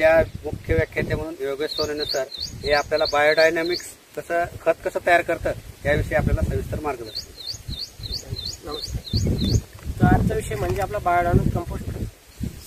मुख्य व्याख्याते म्हणून योगेश सोनवणे सर हे आपल्याला बायोडायनॅमिक्स खत कसं तयार करतं याविषयी आपल्याला सविस्तर मार्गदर्शन. नमस्कार. तर आजचा विषय म्हणजे आपला बायोडायनॅमिक कंपोस्ट खत.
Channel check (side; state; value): both; identical; correlation 1.00